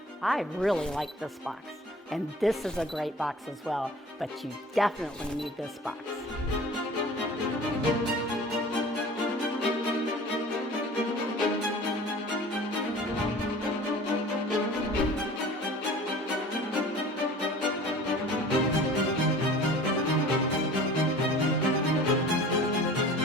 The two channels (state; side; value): normal; both; correlation 0.43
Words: I really like this box, and this is a great box as well, but you definitely need this box.